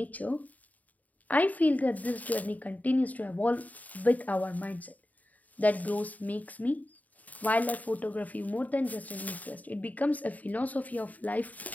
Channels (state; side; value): late; right; 0.075 ms